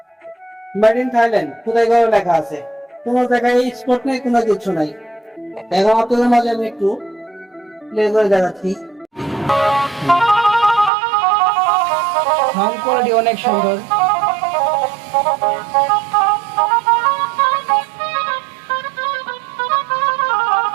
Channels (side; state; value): left; drops out; at 10.9 s